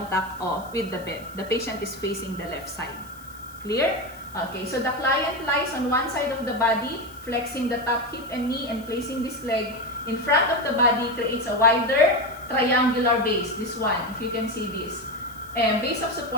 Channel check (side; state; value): left; noise; hiss, 23 dB below the sound